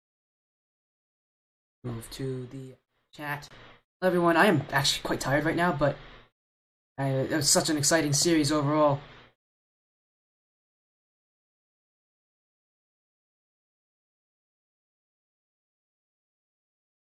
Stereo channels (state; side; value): identical; both; correlation 1.00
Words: Move to the chat. Hello everyone, I am actually quite tired right now, but it was such an exciting series overall.